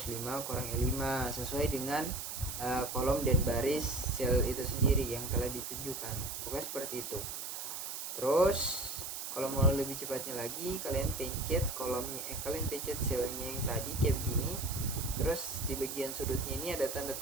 kurang E5, sesuai dengan kolom dan baris sel itu sendiri yang telah ditunjukkan. Pokoknya seperti itu. Terus kalau mau lebih cepatnya lagi, kalian pencet kolomnya, kalian pencet selnya yang tadi kayak begini, Terus di bagian sudutnya ini ada tanda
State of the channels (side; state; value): right; noise; hiss, 6 dB below the sound